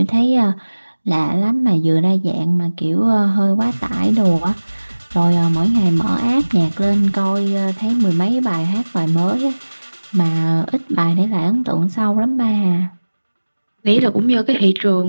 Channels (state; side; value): inverted; both; correlation -1.00